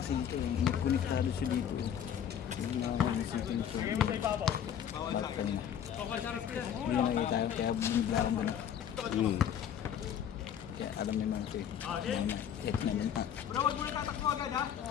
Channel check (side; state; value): right; quieter; 9.1 dB